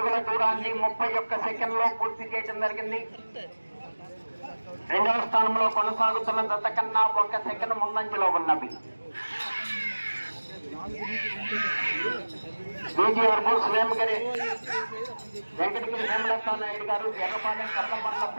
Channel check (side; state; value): both; inverted; correlation -1.00